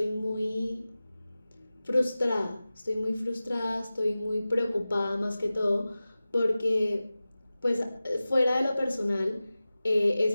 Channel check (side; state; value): both; inverted; correlation -0.96